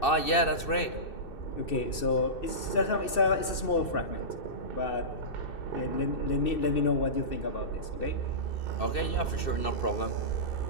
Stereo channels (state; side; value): late; right; 2.6 ms